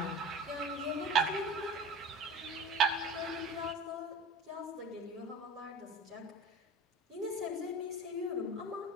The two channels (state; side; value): normal; both; correlation 0.36